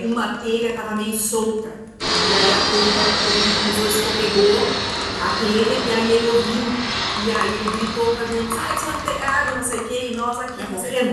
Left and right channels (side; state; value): both; identical; correlation 1.00